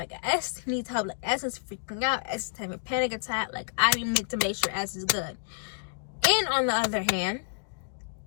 S needs help. Like, S is freaking out. S is having a panic attack. Like, I need to make sure S is good. And on the other hand,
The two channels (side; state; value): right; silent; digital silence